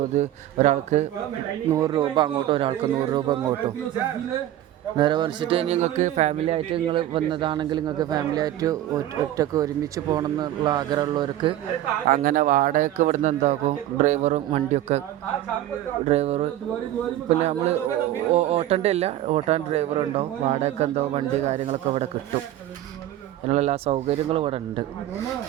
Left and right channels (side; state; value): left; quieter; 13.0 dB